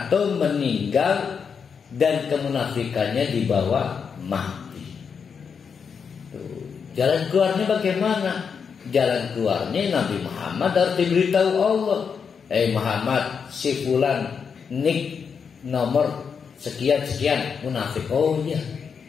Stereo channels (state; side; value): quieter; right; 6.3 dB